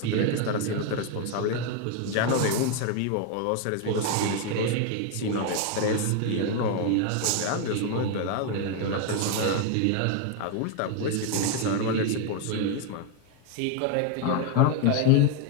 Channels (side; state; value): both; different; correlation 0.01